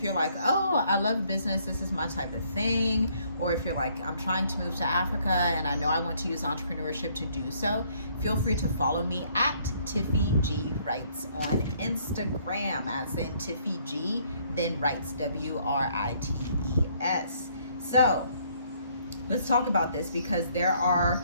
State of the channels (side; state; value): both; inverted; correlation -0.65